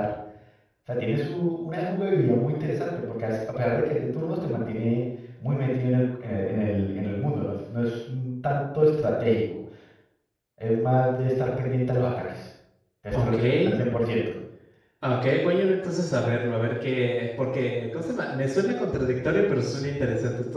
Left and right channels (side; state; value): both; identical; correlation 1.00